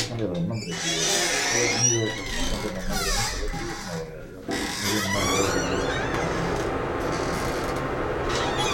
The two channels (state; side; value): identical; both; correlation 1.00